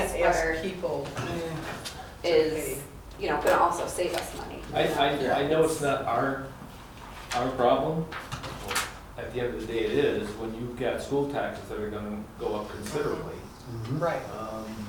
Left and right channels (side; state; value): both; identical; correlation 1.00